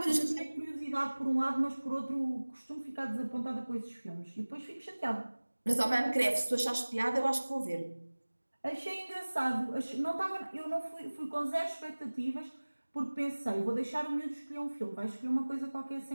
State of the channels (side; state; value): both; inverted; correlation -1.00